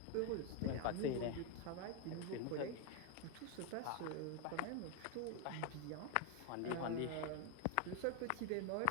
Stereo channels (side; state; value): both; different; correlation 0.01